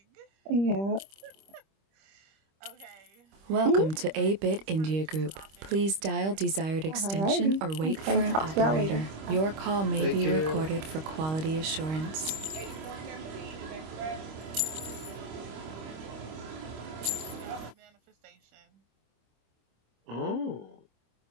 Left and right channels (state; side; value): late; left; 25 ms